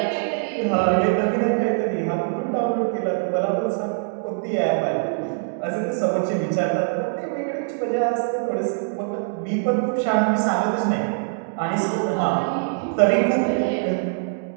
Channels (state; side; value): silent; left; digital silence